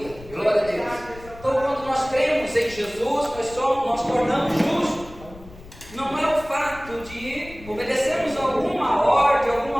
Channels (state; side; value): noise; left; rumble, 18 dB below the sound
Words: Glória a Deus. Então, quando nós cremos em Jesus, nós tornamos justos. Não é o fato de obedecermos alguma ordem,